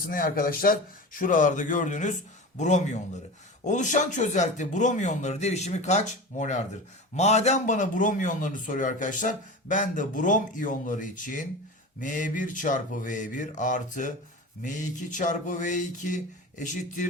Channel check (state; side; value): normal; both; correlation 0.30